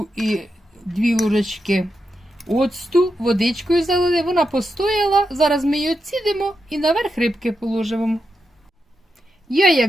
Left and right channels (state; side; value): normal; both; correlation 0.86